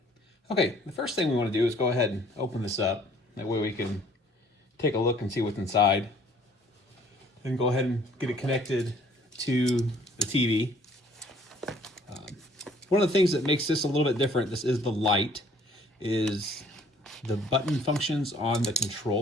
Okay, the first thing we want to do is go ahead and open this up. That way we can take a look and see what's inside. Then go ahead and get it connected to the TV. One of the things that makes this a little bit different, this is the light, is the button functions on the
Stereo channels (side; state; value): both; normal; correlation 0.57